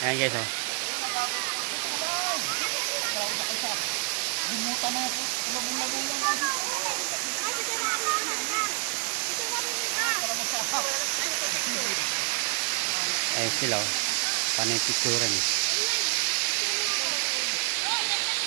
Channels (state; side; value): quieter; left; 34.9 dB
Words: Ayan guys oh. Ayan sila oh. Panay picturean.